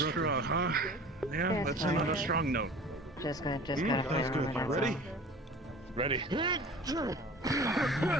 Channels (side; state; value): both; normal; correlation 0.43